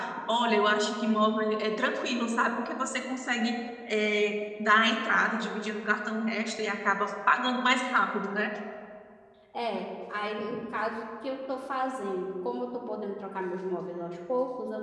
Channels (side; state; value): both; identical; correlation 1.00